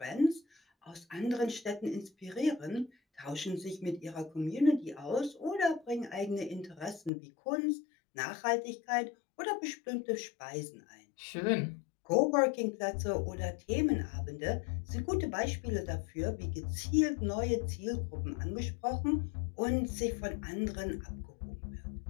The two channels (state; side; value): drops out; right; at 7.1 s